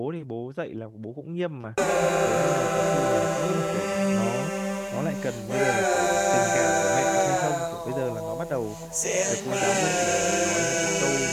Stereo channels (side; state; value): both; identical; correlation 1.00